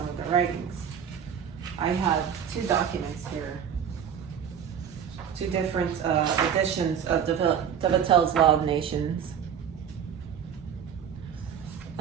of their writings. I have two documents here, two different editions of DefenSe's Law of Nations.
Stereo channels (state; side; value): quieter; left; 8.2 dB